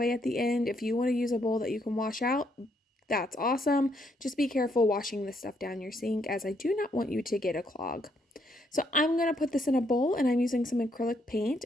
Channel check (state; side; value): normal; both; correlation 0.73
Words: at the end. If you want to use a bowl that you can wash out, that's awesome. Just be careful washing this stuff down your sink, as I do not want you to get a clog. So I'm going to put this in a bowl, and I'm using some acrylic paint,